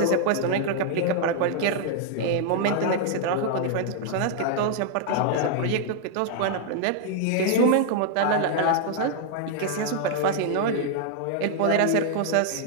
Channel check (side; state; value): both; different; correlation 0.00